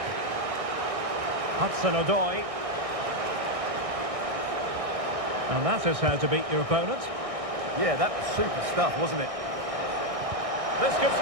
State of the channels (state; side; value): late; left; 1.6 ms